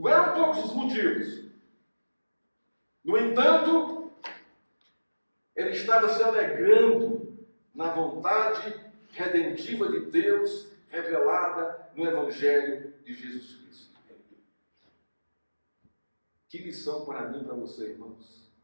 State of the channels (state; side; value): inverted; both; correlation -1.00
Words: eram poucos os motivos. No entanto, ele estava se alegrando na vontade redentiva de Deus revelada no Evangelho de Jesus Cristo. Que lição para mim e para você, irmãos.